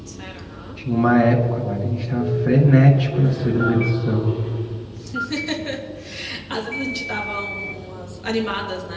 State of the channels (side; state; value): both; identical; correlation 1.00